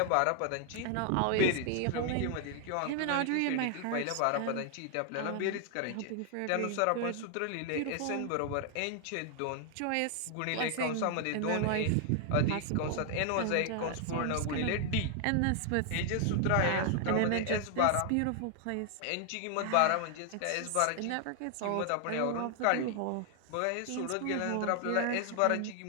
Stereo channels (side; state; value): both; different; correlation 0.00